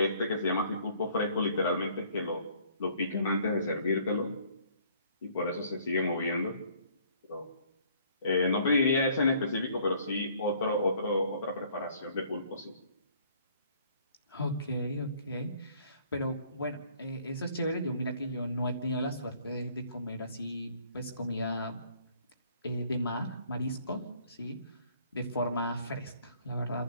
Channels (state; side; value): inverted; both; correlation -0.59